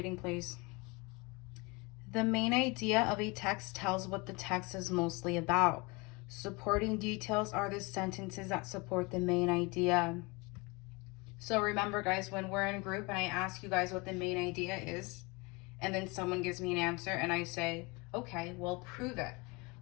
please. The main idea of a text tells what the text is mostly about. Supporting details are the sentences that support the main idea. So remember guys, when we're in a group and I ask you guys what the main idea is, and then someone gives me an answer and I say, okay, well, prove it.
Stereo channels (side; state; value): right; quieter; 27.0 dB